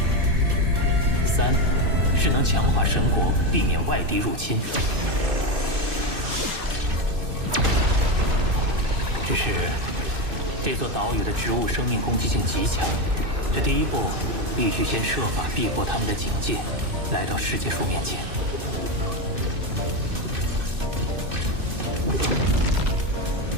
三是能强化神国，避免外敌入侵。只是这座岛屿的植物生命攻击性极强，这第一步必须先设法避过他们的警戒，来到世界树面前。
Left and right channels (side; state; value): left; late; 2.6 ms